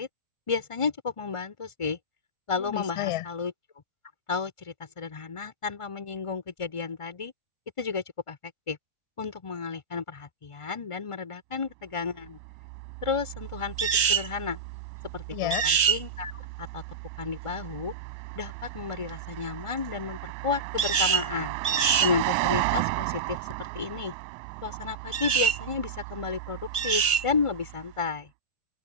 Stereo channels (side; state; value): right; late; 1.5 ms